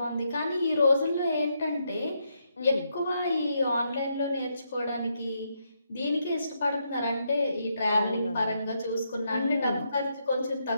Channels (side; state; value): both; inverted; correlation -0.79